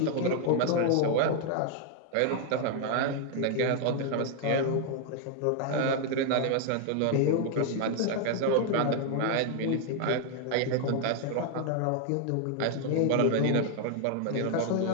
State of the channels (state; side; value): different; both; correlation 0.00